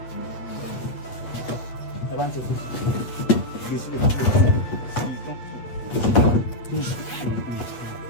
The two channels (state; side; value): late; right; 8.6 ms